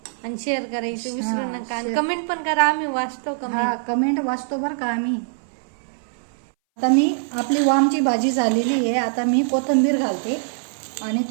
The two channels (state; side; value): silent; left; 61 dB below the other